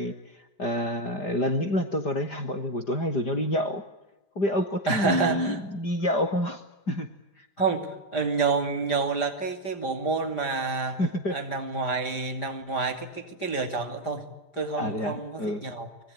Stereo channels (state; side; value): late; right; 5.0 ms